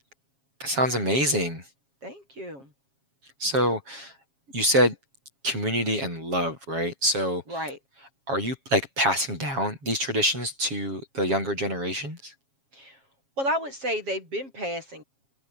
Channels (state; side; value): late; left; 7.3 ms